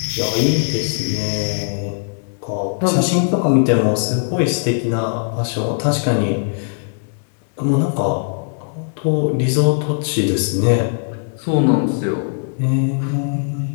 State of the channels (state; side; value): silent; right; digital silence